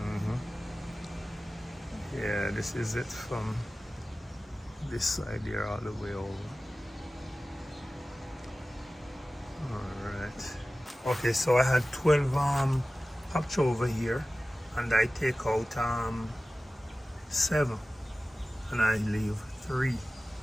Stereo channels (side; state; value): both; normal; correlation 0.96